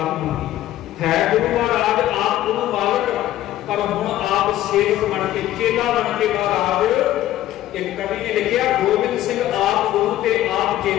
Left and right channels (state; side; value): quieter; right; 13.8 dB